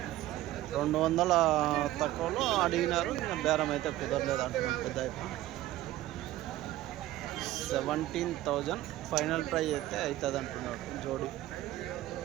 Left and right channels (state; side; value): quieter; left; 15.1 dB